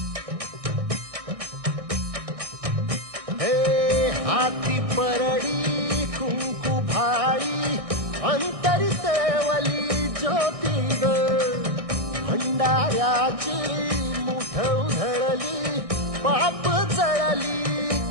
हे हाती परडी कुंकू भाई अंतरी तेवली ज्योती ग भंडाऱ्याची मुठ उधळली पाप जळली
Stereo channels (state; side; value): late; left; 1.6 ms